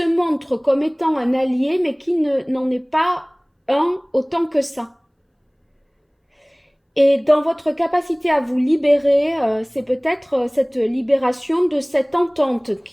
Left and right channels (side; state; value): both; identical; correlation 1.00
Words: montre comme étant un allié, mais qui n'en est pas un autant que ça. Et dans votre capacité à vous libérer, c'est peut-être cette libération de cette entente